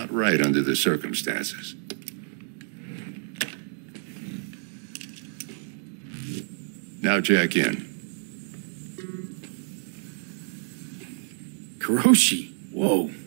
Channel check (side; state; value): left; silent; 59 dB below the other